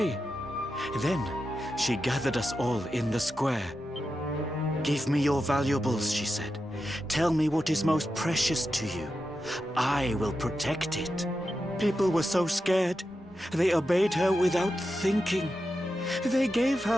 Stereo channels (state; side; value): normal; both; correlation 0.89